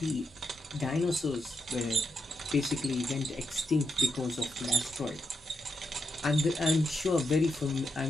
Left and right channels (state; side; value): normal; both; correlation 0.83